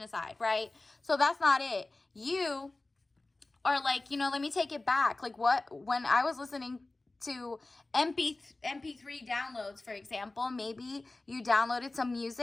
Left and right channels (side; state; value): right; quieter; 3.1 dB